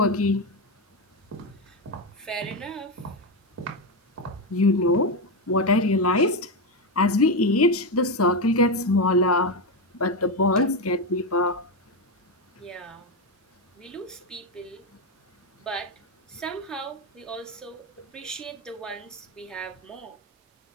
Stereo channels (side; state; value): both; normal; correlation 0.10